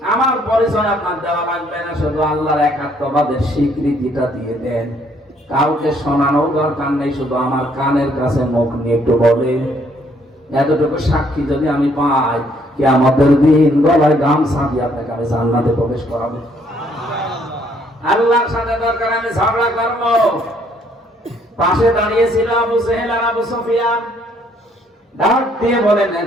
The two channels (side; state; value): both; normal; correlation 0.66